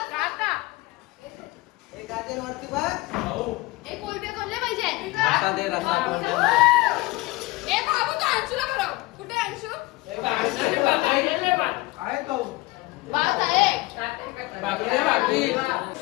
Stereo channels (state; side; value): quieter; right; 21.5 dB